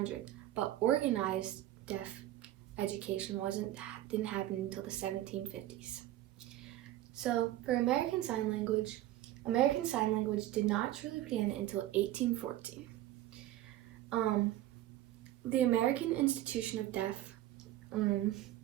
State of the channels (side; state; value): left; quieter; 14.2 dB